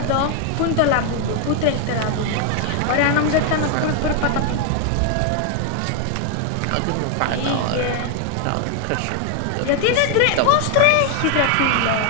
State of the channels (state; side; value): different; both; correlation 0.00